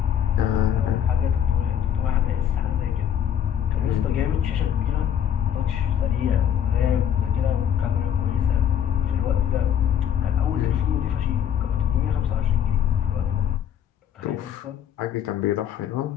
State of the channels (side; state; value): right; quieter; 9.4 dB